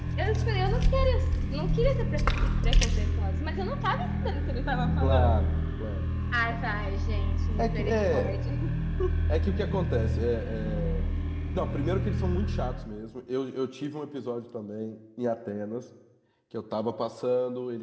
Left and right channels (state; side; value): identical; both; correlation 1.00